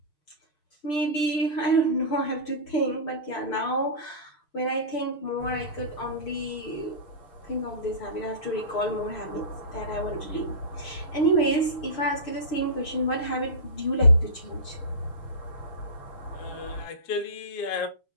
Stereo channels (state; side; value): late; right; 6.7 ms